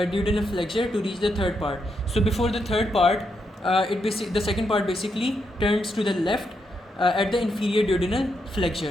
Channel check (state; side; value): normal; both; correlation 0.81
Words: flexure to reach the third part. So before the third part, the second part basically turns to the left at the inferior duodenal